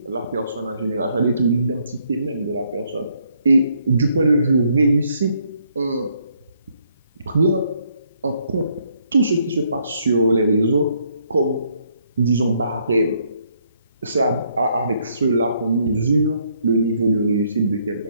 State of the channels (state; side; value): inverted; both; correlation -0.71